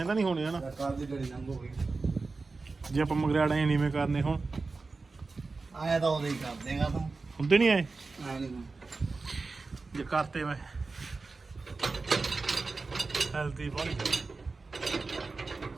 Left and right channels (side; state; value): left; quieter; 3.9 dB